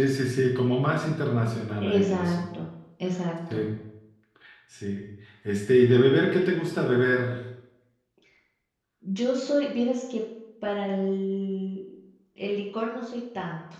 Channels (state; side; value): identical; both; correlation 1.00